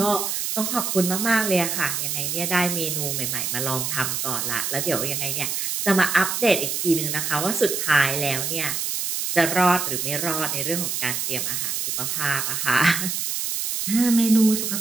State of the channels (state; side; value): noise; right; hiss, 1 dB below the sound